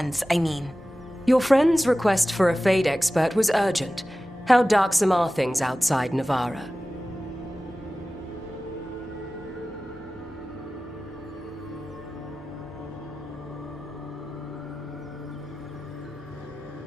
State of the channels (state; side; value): normal; both; correlation 0.96